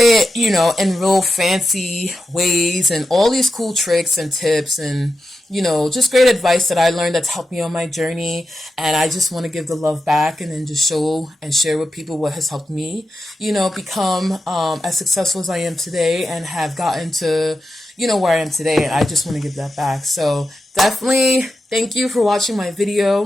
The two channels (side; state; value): both; normal; correlation 0.91